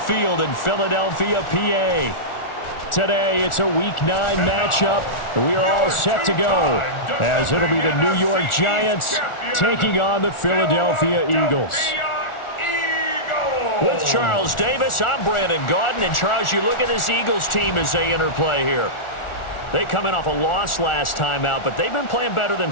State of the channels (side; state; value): right; late; 1.4 ms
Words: in Philadelphia, PA. Today, it's a Week 9 matchup. We are all set to go as it'll be the New York Giants taking on the Philadelphia Eagles. With Charles Davis, I'm Brandon Gaudin. And, Charles, you look at this Eagles team as they interplay here. They come in off a loss last time out, but they've been playing better than